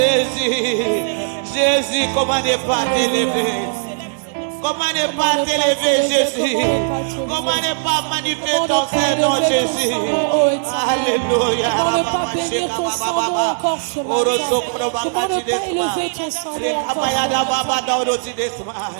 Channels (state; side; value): silent; left; digital silence